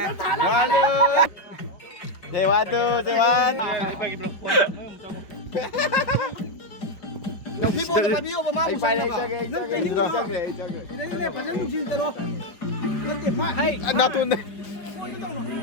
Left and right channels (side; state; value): right; late; 5.1 ms